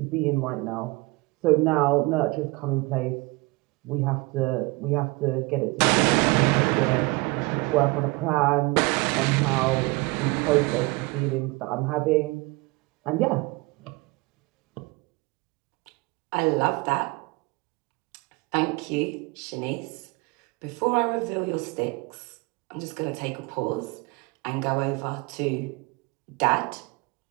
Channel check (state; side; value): quieter; left; 24.4 dB